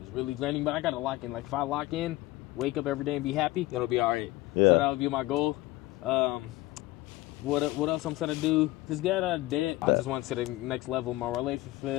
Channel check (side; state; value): right; quieter; 18.7 dB